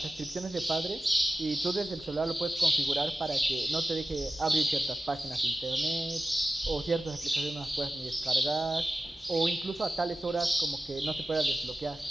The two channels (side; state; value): both; normal; correlation 0.93